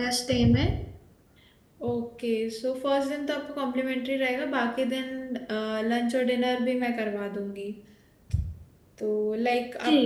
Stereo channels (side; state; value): both; identical; correlation 1.00